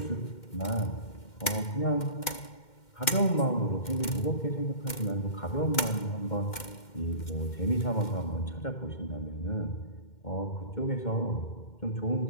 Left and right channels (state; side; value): late; right; 2.1 ms